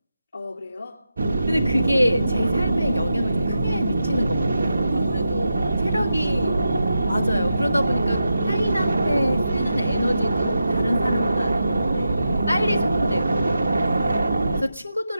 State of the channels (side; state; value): both; inverted; correlation -0.88